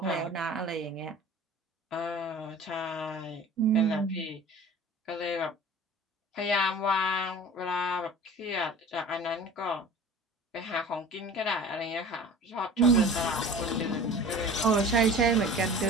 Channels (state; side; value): normal; both; correlation 0.41